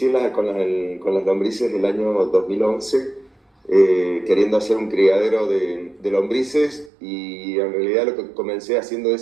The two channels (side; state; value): left; drops out; at 6.9 s